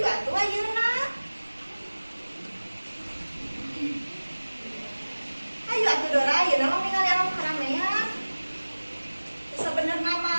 atuh ayeuna. Ayo atuh Dora, ayeuna mah ningali alam keramaian. Sebenarnya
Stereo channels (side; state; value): both; inverted; correlation -1.00